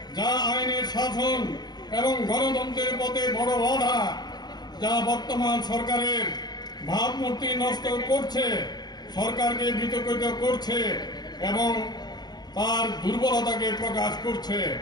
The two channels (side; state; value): right; late; 0.20 ms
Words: আইনের শাসন এবং গণতন্ত্রের পথে বড় বাধা, যা বর্তমান সরকারের ভাবমূর্তি নষ্ট করছে, সরকারকে বিতর্কিত করছে এবং তার দুর্বলতাকে প্রকাশ করছে।